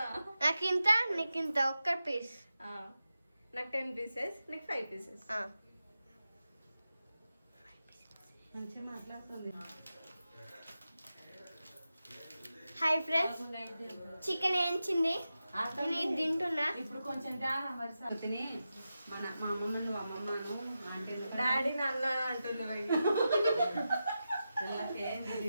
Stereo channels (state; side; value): inverted; both; correlation -0.91